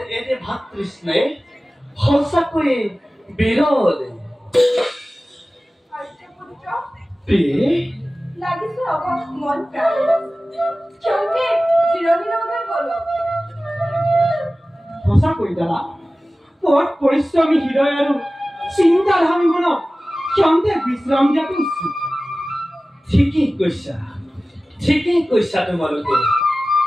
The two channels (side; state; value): both; normal; correlation 0.97